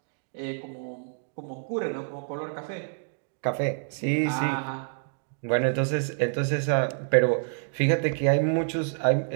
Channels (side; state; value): left; silent; digital silence